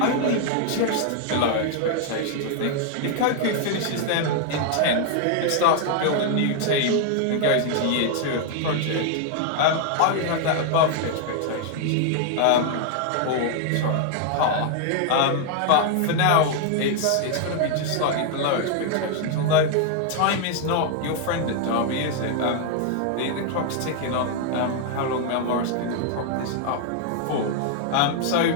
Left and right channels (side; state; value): both; different; correlation 0.00